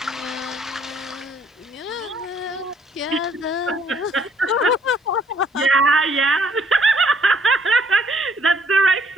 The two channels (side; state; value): both; normal; correlation 0.65